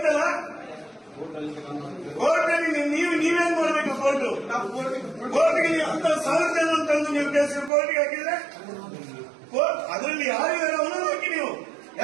ಕೋರ್ಟಲ್ಲಿ ನೀವೇನ್ ಮಾಡ್ಬೇಕು? ಕೋರ್ಟ್ಗೆ ನೀವು ಅಂತ 1000 ಜನ ತಂದು ನೀವು ಕೇಸ್ ಕೋರ್ಟಿಗೆ ಹಾಕಿದ್ರೆ ಅದರಲ್ಲಿ ಯಾರು ಅವನನ್ನು ಹಾಕಿ, ನೀವು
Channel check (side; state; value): left; drops out; at 7.7 s